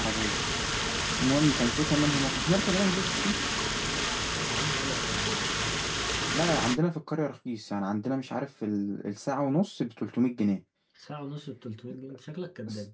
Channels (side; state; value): both; identical; correlation 1.00